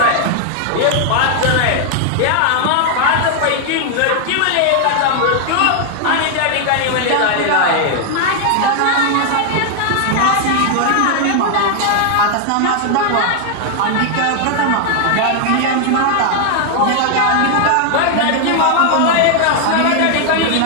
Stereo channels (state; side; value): different; both; correlation 0.00